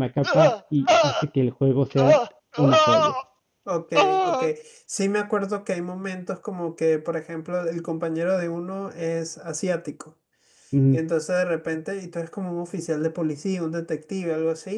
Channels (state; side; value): identical; both; correlation 1.00